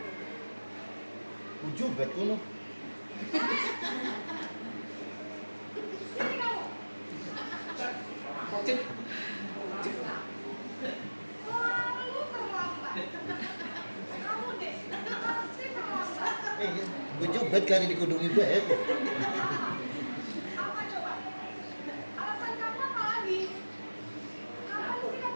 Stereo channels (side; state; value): both; inverted; correlation -1.00